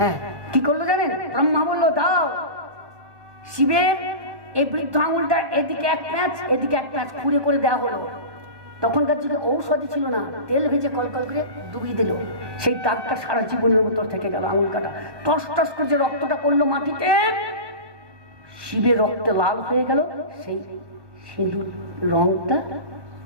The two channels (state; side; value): late; left; 1.5 ms